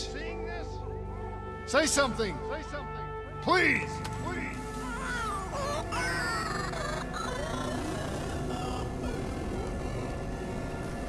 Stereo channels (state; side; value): identical; both; correlation 1.00